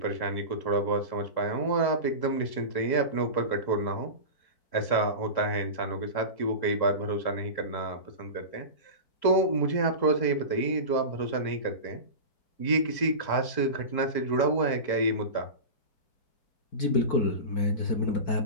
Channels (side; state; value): right; late; 3.7 ms